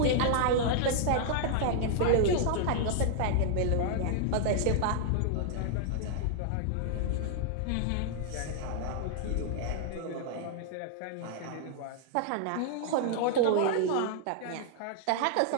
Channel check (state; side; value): different; both; correlation -0.01